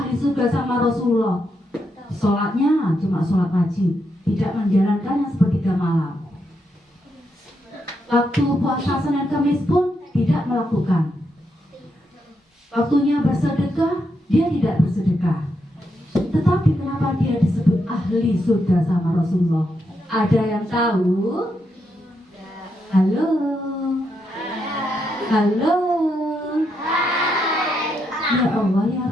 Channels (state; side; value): normal; both; correlation 0.81